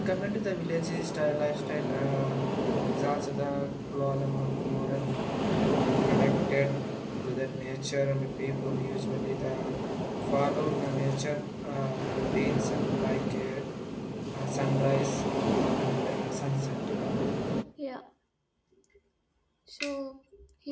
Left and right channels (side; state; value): both; identical; correlation 1.00